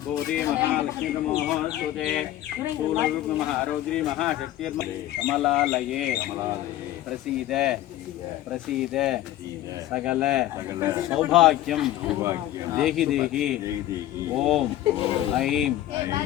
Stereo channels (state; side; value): quieter; right; 13.9 dB